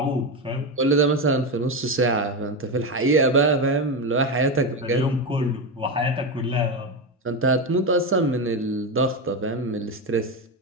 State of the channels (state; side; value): normal; both; correlation 0.14